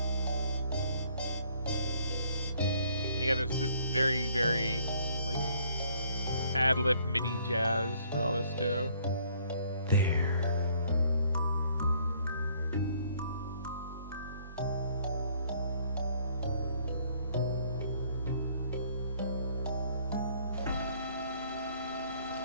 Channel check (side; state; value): both; inverted; correlation -0.62